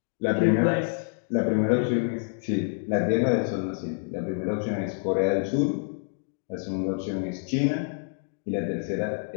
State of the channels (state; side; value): silent; right; digital silence